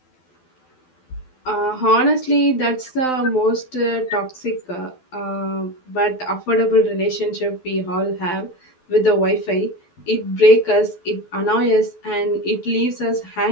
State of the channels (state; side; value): late; right; 12 ms